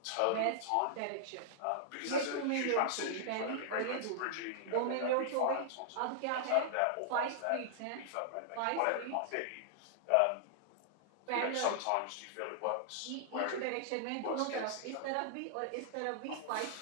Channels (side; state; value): both; different; correlation -0.01